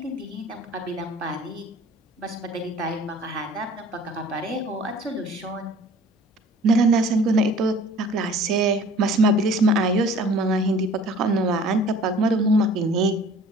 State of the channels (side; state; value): both; normal; correlation 0.49